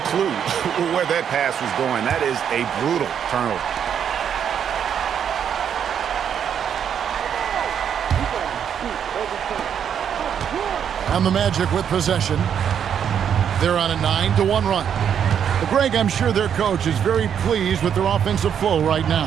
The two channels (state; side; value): quieter; left; 8.4 dB